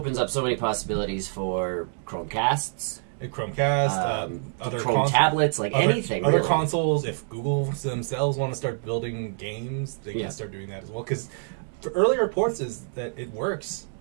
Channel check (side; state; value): left; silent; digital silence